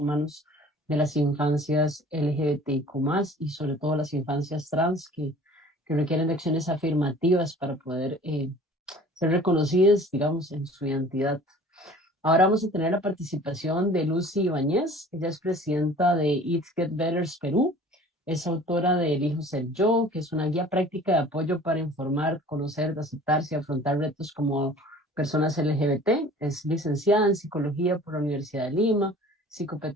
de las infancias LGBTIQ+, y sobre todo las infancias trans que requieren de acciones afirmativas para poder ser reconocidas, digamos, en su identidad. Ahora vamos a tener la participación de Lucy Ibáñez. Ella es presidenta de It Get Betters Perú. Es autora de Elijo Ser Yo, que es una guía práctica de apoyo para informar, conocer, aceptarse y afrontar retos como personas LGBT. Es licenciada en Psicología por la Universidad de Lima,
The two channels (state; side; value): normal; both; correlation 0.47